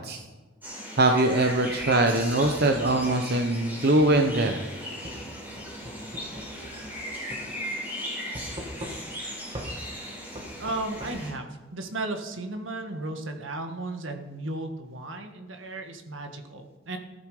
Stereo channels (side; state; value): both; normal; correlation 0.19